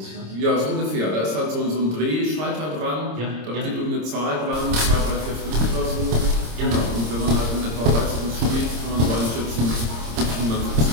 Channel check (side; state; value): left; late; 26 ms